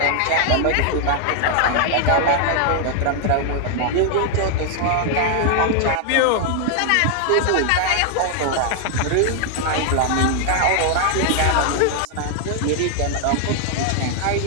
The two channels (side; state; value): both; different; correlation 0.00